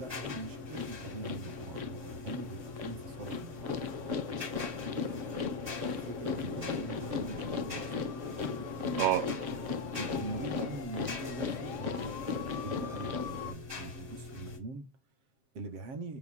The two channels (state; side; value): late; left; 7.5 ms